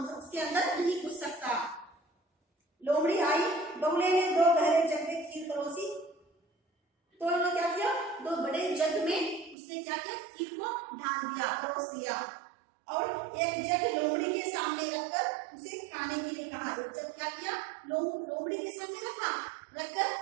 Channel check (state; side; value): drops out; left; at 9.6 s